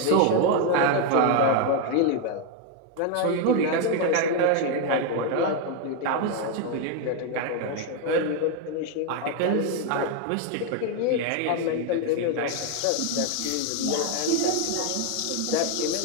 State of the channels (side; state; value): both; different; correlation 0.01